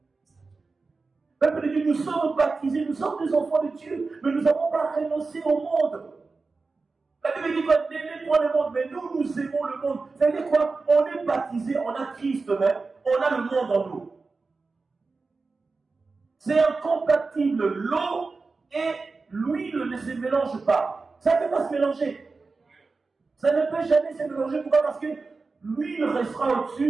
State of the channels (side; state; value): left; quieter; 4.1 dB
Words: Peuple de Dieu, nous sommes baptisés, nous sommes des enfants de Dieu, mais nous n'avons pas renoncé au monde. La Bible dit qu'on n'aimait pas le monde, mais nous, nous aimons le monde. Ça veut dire quoi? On est baptisé, on a Christ même, on a le monde en nous. C'est incompatible. L'eau et l'huile ne se mélangent pas. Ça ne peut pas se mélanger. Ça ne peut jamais se mélanger. Pourquoi? Parce que l'huile restera